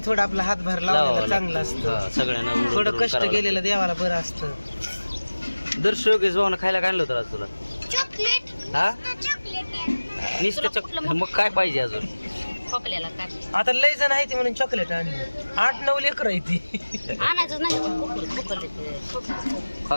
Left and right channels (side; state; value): both; inverted; correlation -1.00